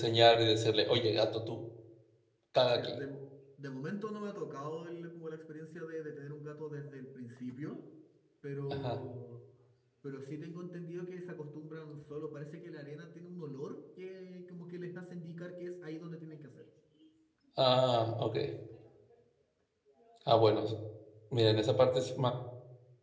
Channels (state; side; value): identical; both; correlation 1.00